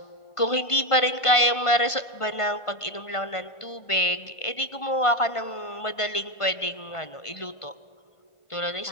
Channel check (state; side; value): late; right; 1.5 ms